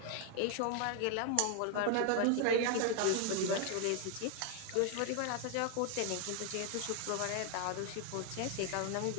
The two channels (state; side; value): different; both; correlation 0.00